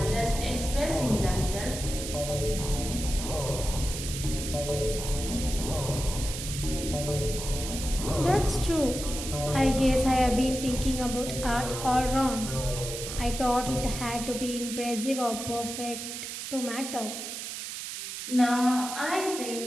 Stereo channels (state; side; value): noise; right; hiss, 7 dB below the sound